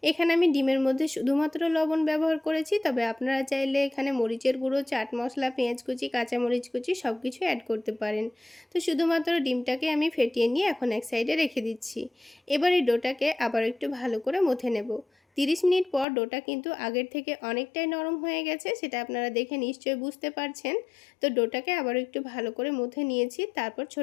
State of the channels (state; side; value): drops out; right; at 16.1 s